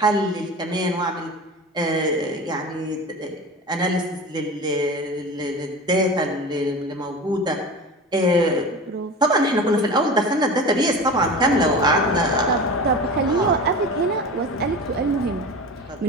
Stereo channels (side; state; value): both; normal; correlation 0.32